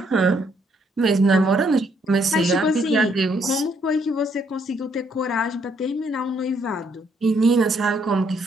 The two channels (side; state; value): both; normal; correlation 0.70